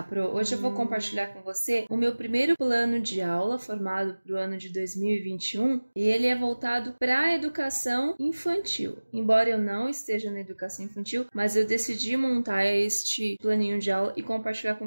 Pro. Hoje eu vou compartilhar com você o meu primeiro plano de aula formado para o ano de 2021 e ele é voltado para a educação infantil. Embora eu não esteja na educação infantil, mas eu decidi montar este planinho de aula e compartilhar com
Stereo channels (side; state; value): both; inverted; correlation -1.00